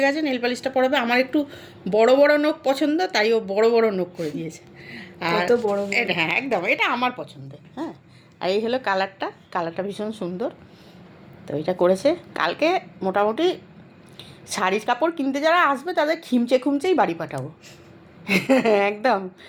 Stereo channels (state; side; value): identical; both; correlation 1.00